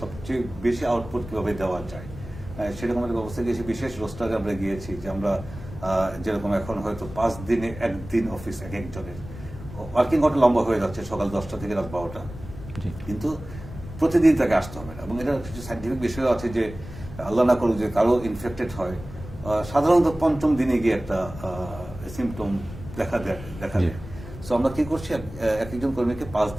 সবচেয়ে বেশি আউটপুট কিভাবে দেওয়া যায় সেরকম একটা ব্যবস্থা দিয়েছি। বিশেষ রোস্টারে আমরা গিয়েছি যে আমরা যেরকম এখন হয়তো 5 দিনে 1 দিন অফিস এক একজনের ওয়ার্কিং আওয়ার লম্বা হয়ে যাচ্ছে, সকাল 10টা থেকে রাত 12টা, কিন্তু প্রতিদিন তাকে আসতে হবে না। এবং এটা কিছু সাইন্টিফিক বিষয় আছে যে আল্লাহ না করুক যে কারো ইনফেক্টেড হয়, সাধারণত 5ম দিনে গিয়ে একটা সিমটম দেখা দেয়। সো আমরা কি করছি, এক একজন কর্মীকে 5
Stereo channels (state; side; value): noise; left; rumble, 13 dB below the sound